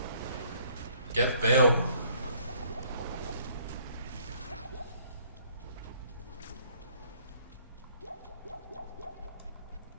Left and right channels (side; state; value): both; inverted; correlation -0.61